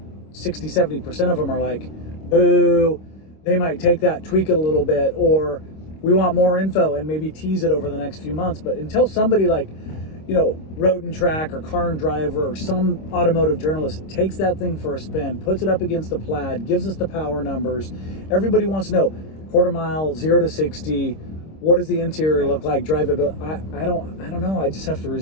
60, 70% of them are like, boo, they might take that, tweak it a little bit, or we want more info and maybe tease it over the next few months. But until somebody like, you know, Road and Track or Car and Driver or some automotive journalist takes that thing for a spin, puts it up against the Plaid, gives us the power numbers, everybody wants to know quarter mile, 0 to 60, what does the interior look like, drivability. I don't know. I just have to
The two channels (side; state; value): right; late; 26 ms